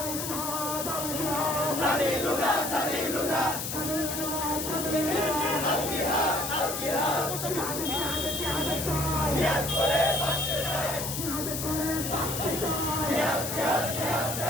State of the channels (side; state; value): left; noise; hiss, 4 dB below the sound